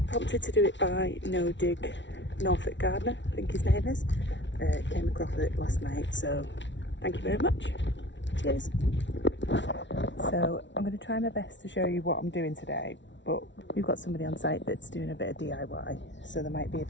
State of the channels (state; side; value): late; right; 0.53 ms